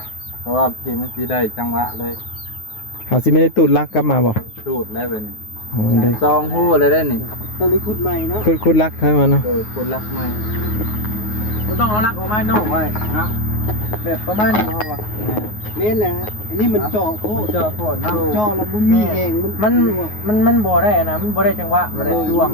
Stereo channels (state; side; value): late; right; 9.5 ms